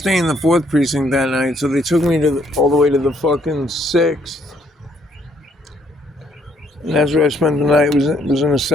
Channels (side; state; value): both; normal; correlation 0.69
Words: in the 4th precinct that night, so they took me all the way to the fucking 6th. And that's where I spent the night. Was in a